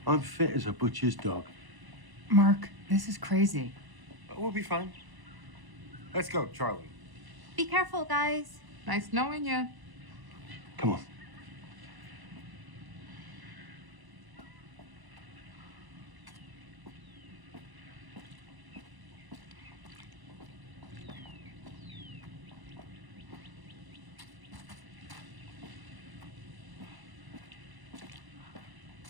I'm fit as a butcher's dog. Mark, this is crazy. We'll be fine. Let's go, Charlie. Be careful, guys. Nice knowing you. Come on.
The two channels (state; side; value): late; left; 1.0 ms